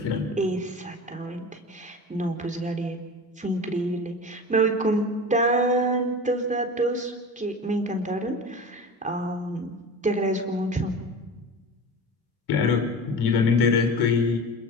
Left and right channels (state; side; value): normal; both; correlation 0.32